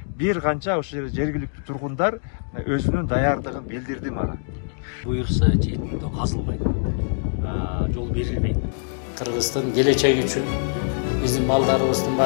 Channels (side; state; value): right; silent; digital silence